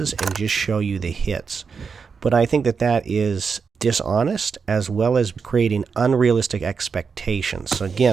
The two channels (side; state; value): left; quieter; 5.6 dB